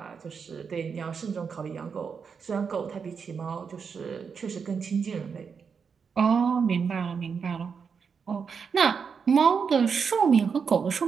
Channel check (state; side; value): quieter; left; 6.1 dB